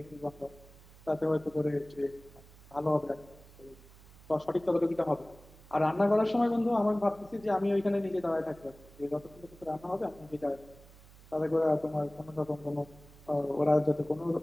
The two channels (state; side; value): noise; right; hum, 22 dB below the sound